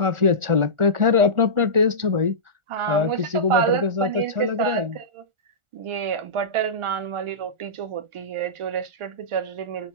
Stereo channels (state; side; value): late; left; 1.4 ms